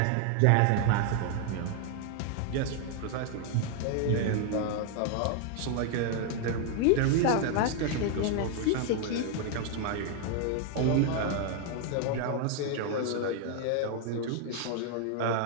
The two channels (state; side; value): different; both; correlation 0.00